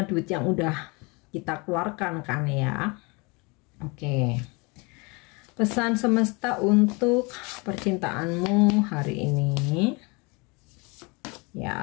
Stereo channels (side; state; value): right; quieter; 28.6 dB